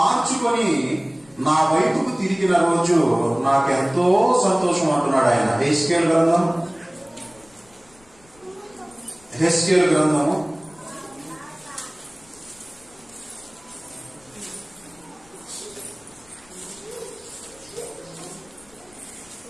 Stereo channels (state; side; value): noise; left; rumble, 29 dB below the sound